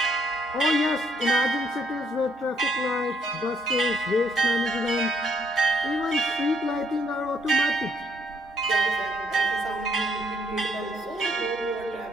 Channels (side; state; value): both; normal; correlation 0.70